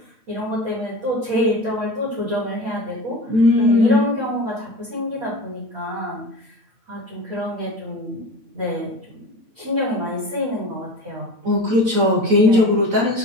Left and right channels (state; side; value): late; left; 8.8 ms